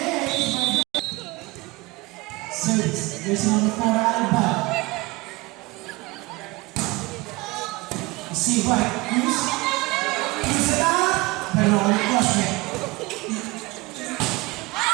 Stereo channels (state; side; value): quieter; left; 23.3 dB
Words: ace. Service. There's number 4 Alibaya. Silva. Cruz. Cruz attack. Pero cross net.